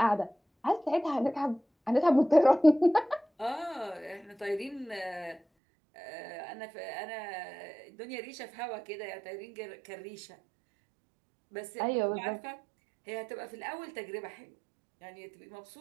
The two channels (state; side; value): drops out; left; at 5.4 s